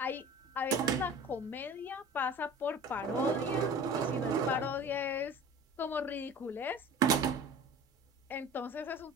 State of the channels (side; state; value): both; normal; correlation 0.40